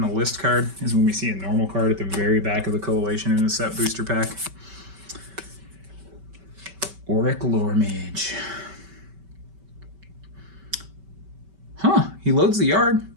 a list card? Is when we see a normal card at the very back of the Coalition in a set booster pack? Auric Lore Mage. Huh, he loads the yard.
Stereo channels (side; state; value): left; late; 5.2 ms